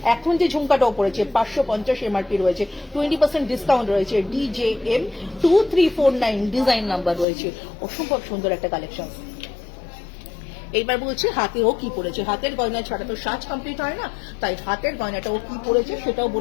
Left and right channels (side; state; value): right; drops out; at 7.2 s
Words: এখন যে ঝুমকাটাও পড়েছে 550 এমআরপি রয়েছে, 20% ডিসকাউন্ট রয়েছে। DJM 2349 ডিজাইন নাম্বার রয়েছে, অসম্ভব সুন্দর একটা কালেকশন। এইবার বলছি হাতেও কি পড়েছে, হাতের গয়না ছাড়া তো সাজ কমপ্লিট হয় না, তাই হাতের গয়নাটাও কি পড়েছে সেটাও